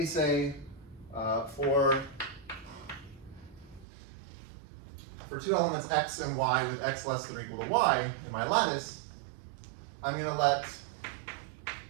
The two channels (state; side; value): drops out; left; at 3.9 s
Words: say for two elements x and y with x less than or equal to y in my lattice, I'm going to let